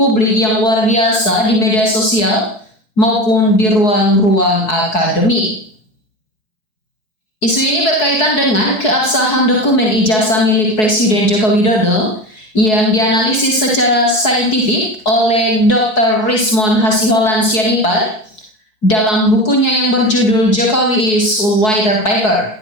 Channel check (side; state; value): right; late; 4.7 ms